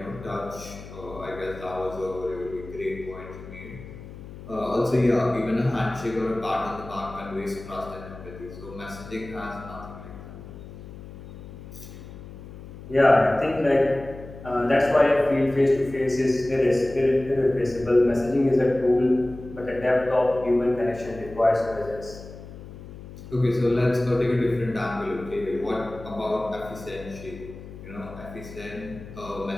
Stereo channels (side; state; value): left; noise; hum, 14 dB below the sound